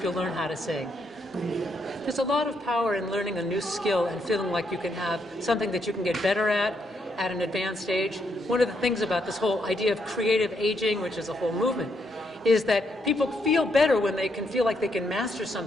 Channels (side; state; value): both; normal; correlation 0.77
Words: you'll learn how to sing. There's a lot of power in learning a new skill and feeling like you can have something that you can get better at an advanced age. One of the things about this whole idea of creative aging, which is a whole movement, is that people feel better when they can feel like they can master